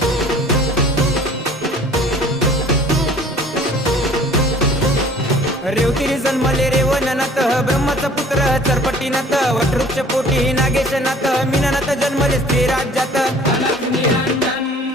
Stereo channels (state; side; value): normal; both; correlation 0.51